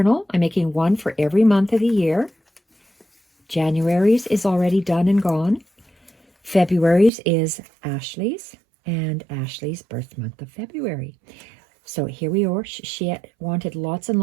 I'm making one for every month of the year. January's is already done and gone. February's is Ashley's, and Ashley's birth month of February. So here we are. She wanted lots and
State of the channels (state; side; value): drops out; left; at 7.1 s